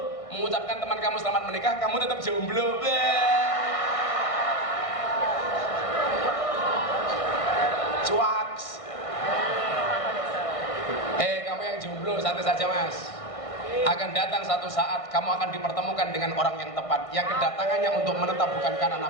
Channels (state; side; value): late; right; 1.6 ms